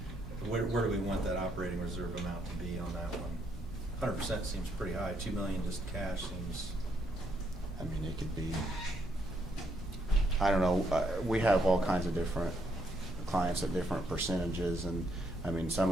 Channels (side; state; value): both; normal; correlation 0.74